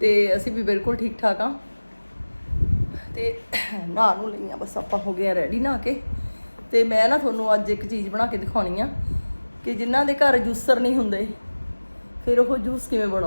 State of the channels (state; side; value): inverted; both; correlation -1.00